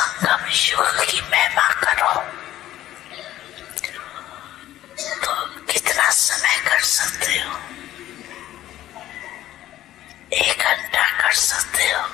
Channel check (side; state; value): right; quieter; 13.7 dB